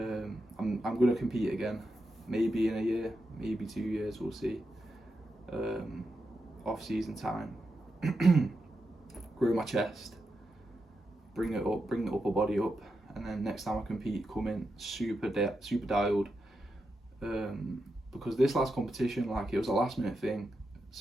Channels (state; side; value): normal; both; correlation 0.87